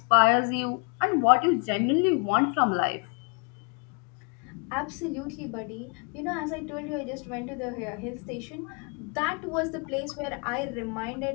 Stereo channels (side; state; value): right; quieter; 34.3 dB